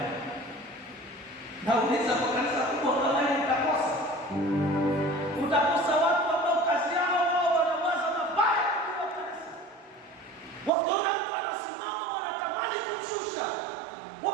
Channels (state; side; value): drops out; left; at 10.7 s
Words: Nauliza kwa kanisa kubwa kama hili mtakosa. Utakosa watu ambao kazi yao wao wanawaza mabaya kwa kanisa. Wakiona mtu anasimama wanatamani kumshusha.